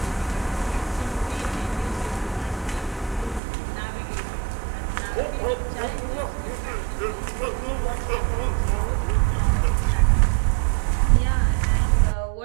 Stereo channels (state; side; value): drops out; left; at 3.4 s